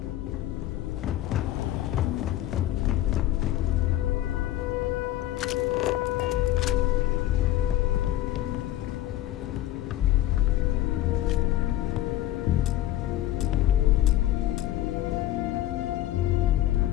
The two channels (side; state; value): right; quieter; 14.1 dB